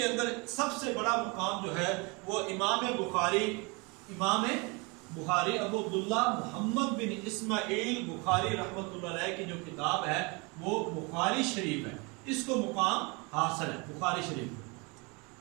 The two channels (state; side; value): quieter; left; 29.1 dB